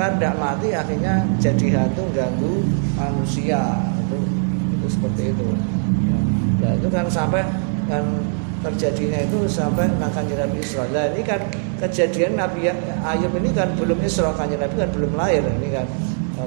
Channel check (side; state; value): left; silent; 60 dB below the other